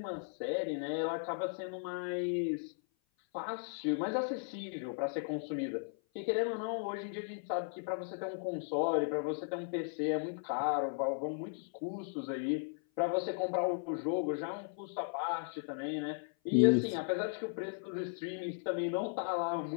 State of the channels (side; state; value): right; silent; 53 dB below the other